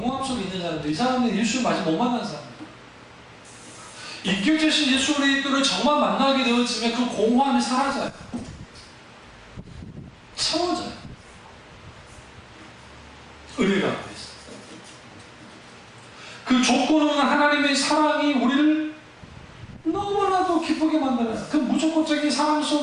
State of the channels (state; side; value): identical; both; correlation 1.00